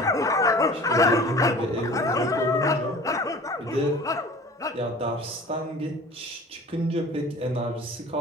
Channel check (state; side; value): normal; both; correlation 0.44